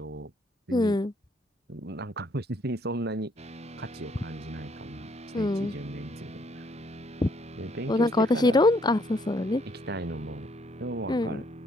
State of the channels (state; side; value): normal; both; correlation 0.68